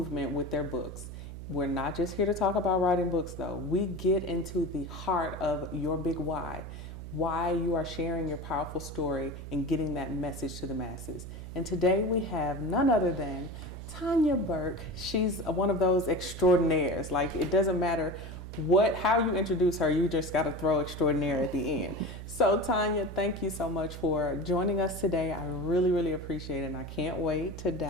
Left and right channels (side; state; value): right; noise; hum, 10 dB below the sound